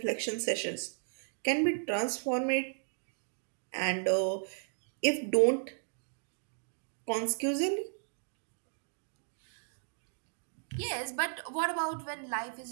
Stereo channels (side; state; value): left; silent; digital silence